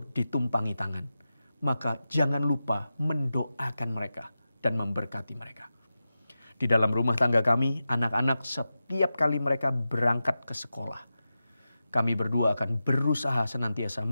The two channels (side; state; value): both; inverted; correlation -0.92